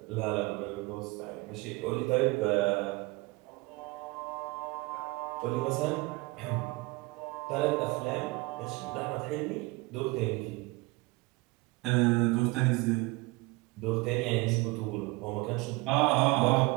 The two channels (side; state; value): left; quieter; 24.0 dB